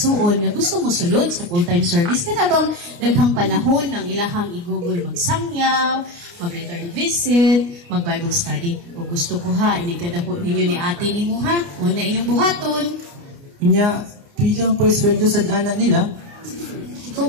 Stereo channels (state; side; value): late; left; 29 ms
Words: nga gusto mo sulod sa full-time service. Kada bang daghang panahon ng ilahang i-google magsangyaw, mag-return visit, mag-Bible study. O gusto ko ha, inikadako ninyo ni ate ni mo ha. Muna inyong buhaton. Kanya, bilang po sweldo sa anak nila.